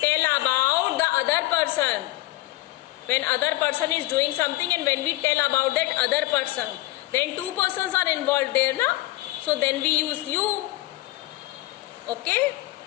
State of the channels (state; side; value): quieter; right; 18.6 dB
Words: about the other person. When other person is doing something and when we tell about that other person. Then 2 persons are involved there na. So then we use you. Okay.